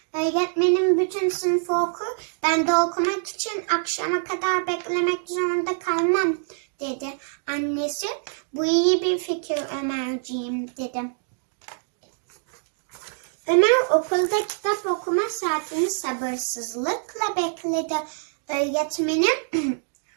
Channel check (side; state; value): left; silent; 60 dB below the other